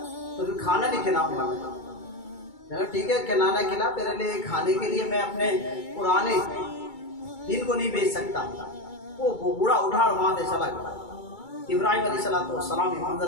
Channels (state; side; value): late; right; 2.3 ms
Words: फिर खाना नहीं खिलाऊंगा। ठीक है, खिलाना खिला, तेरे लिए खाने के लिए मैं अपने पुराने दिन को नहीं बेच सकता। वो बूढ़ा उठा और वहां से चला गया। इब्राहिम अलैहिस्सलाम ये